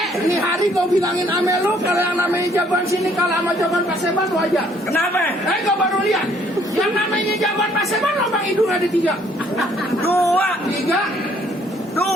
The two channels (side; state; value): both; normal; correlation 0.63